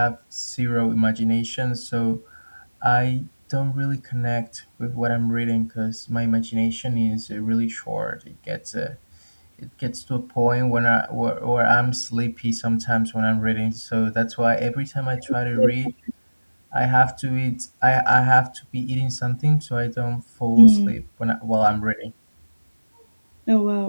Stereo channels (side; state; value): both; inverted; correlation -1.00